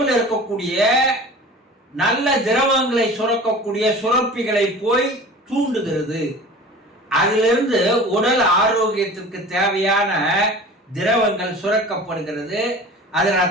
இருக்கக்கூடிய நல்ல திரவங்களை சுரக்கக்கூடிய சுரப்பிகளை போய் தூண்டுகிறது. அதிலிருந்து உடல் ஆரோக்கியத்திற்கு தேவையான திரவங்கள் சுரக்கப்படுகிறது, அது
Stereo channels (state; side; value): normal; both; correlation 0.40